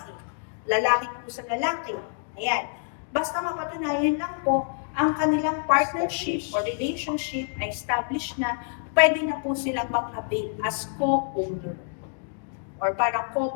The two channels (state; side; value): silent; right; digital silence